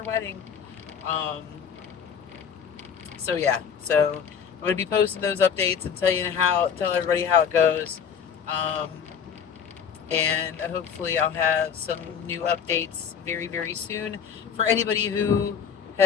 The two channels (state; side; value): quieter; right; 7.4 dB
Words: wedding. Um, so yeah, so I'm going to be posting those updates and tell everybody how it goes. Um, and hopefully I'll have some new updates very, very soon. For anybody who